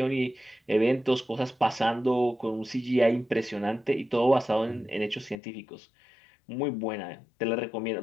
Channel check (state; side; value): drops out; right; at 5.4 s